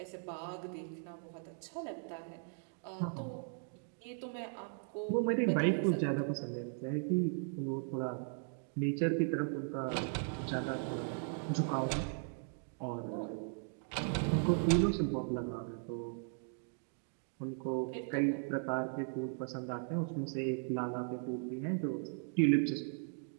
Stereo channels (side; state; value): left; silent; 53 dB below the other